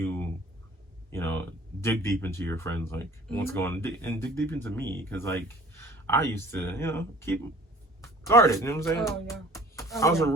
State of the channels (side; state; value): both; normal; correlation 0.49